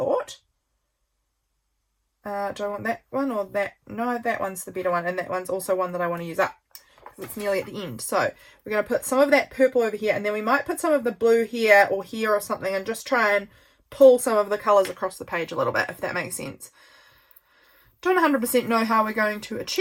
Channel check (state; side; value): identical; both; correlation 1.00